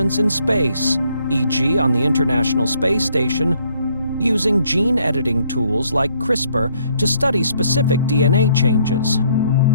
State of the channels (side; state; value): both; inverted; correlation -0.67